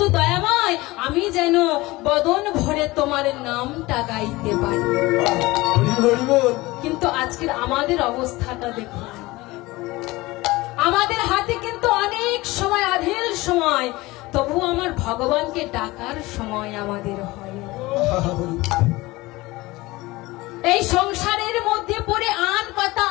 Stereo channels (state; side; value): quieter; right; 20.6 dB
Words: দয়াময়, আমি যেন বদন ভরে তোমার নামটা গাইতে পারি। কিন্তু আজকের আমাদের অবস্থাটা দেখুন, আমাদের হাতে কিন্তু অনেক সময়, আধেল সময়, তবু আমার ভগবানকে ডাকার সময় আমাদের হয়। এই সংসারের মধ্যে পড়ে আন কথা,